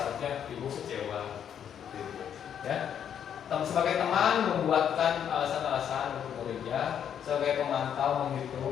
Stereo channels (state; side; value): quieter; right; 8.8 dB